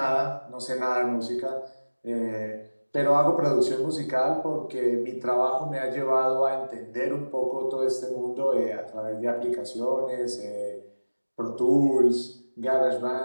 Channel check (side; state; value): both; inverted; correlation -1.00